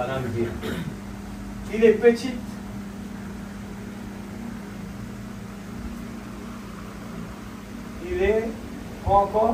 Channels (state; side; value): identical; both; correlation 1.00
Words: vraiment le dire. Il est petit. Il est